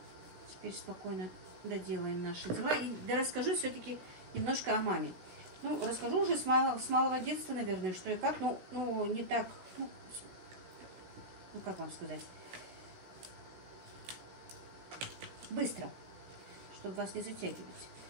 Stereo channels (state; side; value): late; left; 17 ms